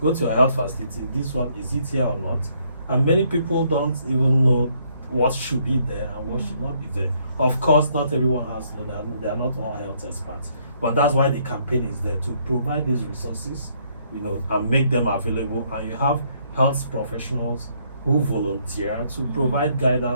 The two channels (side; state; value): both; inverted; correlation -0.69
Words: go to your health facility, this one, is it here or not? And many people don't even know what should be there and what should not be there. Of course, not everyone has, they are not all health experts, but that's why the campaign is there, to provide these resources, you know, and make them available. And you have health professionals who volunteer to provide